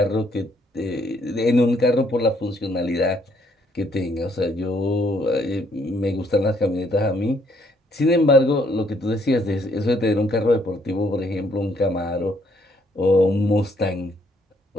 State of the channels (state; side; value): normal; both; correlation 0.68